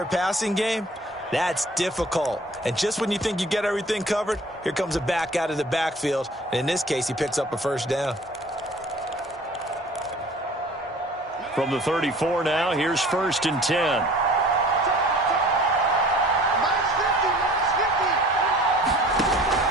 passing game? That's difficult. And just when you think you get everything covered, here comes a back out of the backfield. And in this case, he picks up a first down. From the 34 now, here's 1st and 10.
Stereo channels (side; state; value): both; normal; correlation 0.48